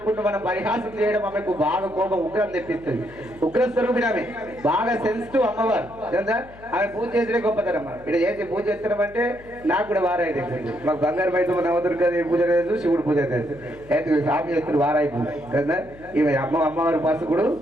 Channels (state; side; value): noise; left; hum, 21 dB below the sound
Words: మనం పరిహాసం చేయడం ఆమెకు బాగా కోపం ఉగ్రం తెప్పిస్తుంది. ఉగ్ర స్వరూపిణి ఆమె, బాగా సెన్సిటివ్ అమ్మవారు. ఆమె పూజ చేసిన గొప్పతనం. ఇక్కడ చేసి పూజ చేస్తున్నాం అంటే నాకు కూడా వారాయి తెలిసింది. మాకు బంగారు బయట నవదుర్గదేవి పూజ లేదు, శివుడు పూజ తెలుసు. అయితే స్వామి చేస్తున్నారు వారాయి పూజ కదా. ఈమె అమ్మవారి పసుకుడు